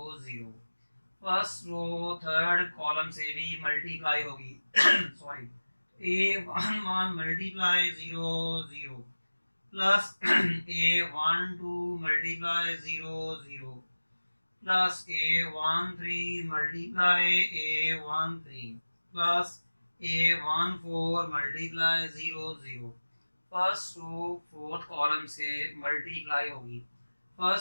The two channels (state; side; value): inverted; both; correlation -1.00